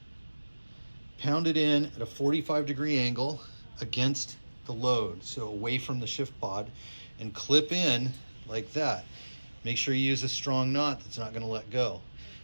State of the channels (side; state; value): both; inverted; correlation -1.00